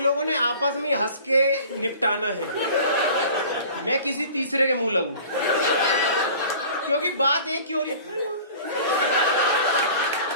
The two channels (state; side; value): inverted; both; correlation -0.44